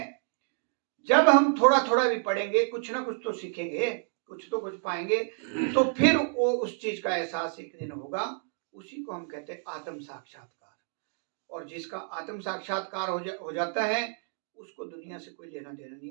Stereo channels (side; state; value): left; silent; 58 dB below the other